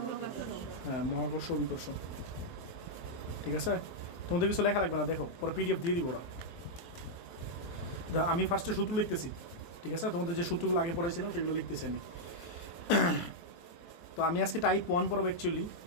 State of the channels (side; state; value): right; late; 23 ms